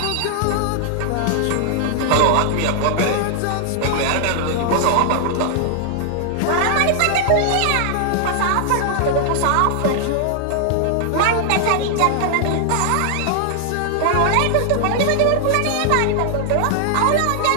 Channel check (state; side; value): different; both; correlation 0.00